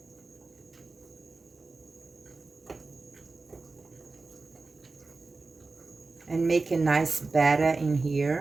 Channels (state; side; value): quieter; left; 3.7 dB